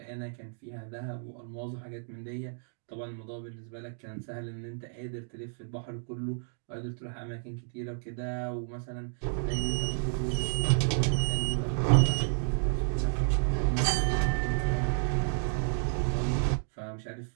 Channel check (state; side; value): silent; left; digital silence